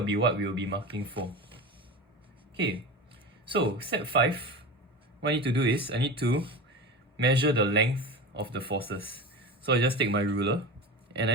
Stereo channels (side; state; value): both; normal; correlation 0.28